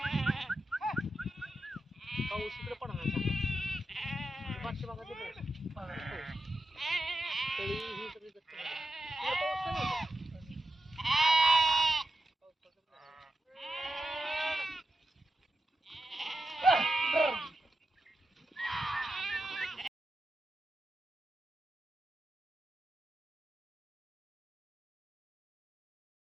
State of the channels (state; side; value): normal; both; correlation 0.89